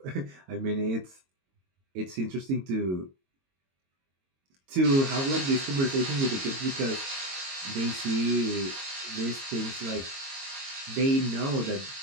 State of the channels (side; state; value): left; late; 22 ms